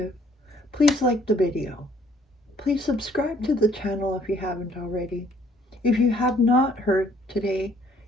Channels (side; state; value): both; normal; correlation 0.61